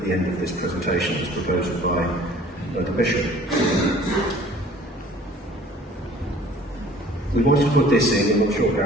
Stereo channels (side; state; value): both; normal; correlation 0.50